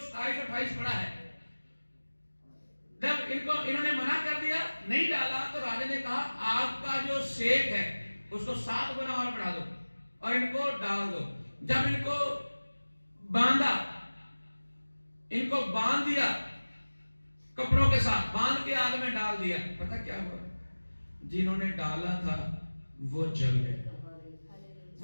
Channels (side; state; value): both; inverted; correlation -1.00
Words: 27-28 पढ़ा है, जब इन्होंने मना कर दिया, नहीं डाला, तो राजा ने कहा आग का जो सेक है उसको 7 गुना और बढ़ा दो और इनको डाल दो। जब इनको बांधा, इनको बांध दिया, कपड़ों के साथ बांध के आग में डाल दिया, पता क्या हुआ? जिन्होंने डाला था वो जल गए,